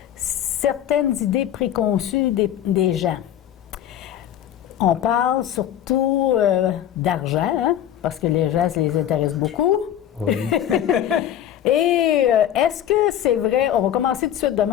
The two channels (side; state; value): right; quieter; 10.9 dB